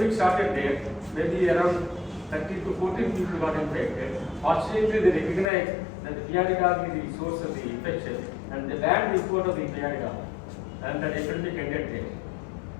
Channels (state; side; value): drops out; right; at 5.5 s